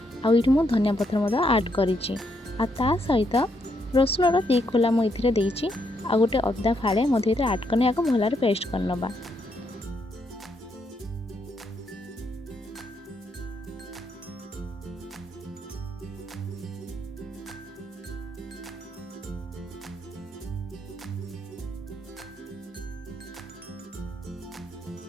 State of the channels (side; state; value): both; normal; correlation 0.76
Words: आठ मु धनिया पत्र आड करी सहित रसुण 2 खोला मुझे देती आ गोटे अदा फाड़े मध्य आड करने भल पेस्ट करनबा।